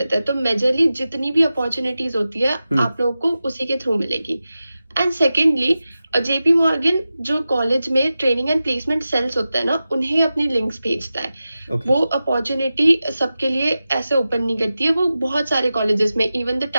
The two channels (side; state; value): both; inverted; correlation -0.93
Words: हैं। तो मेजरली जितनी भी अपॉर्चुनिटीज होती है आप लोगों को उसी के थ्रू मिलेगी। एंड सेकेंडली जेपी मॉर्गन जो कॉलेज में ट्रेनिंग एंड प्लेसमेंट सेल्स होता है ना, उन्हें अपनी लिंक्स भेजता है। वो अपॉर्चुनिटी सबके लिए ऐसे ओपन नहीं करती है, वो बहुत सारे कॉलेजेस में, इवन द